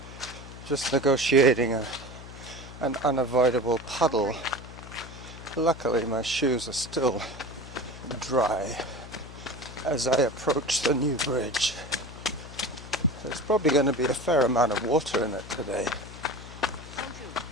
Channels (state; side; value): noise; left; hum, 14 dB below the sound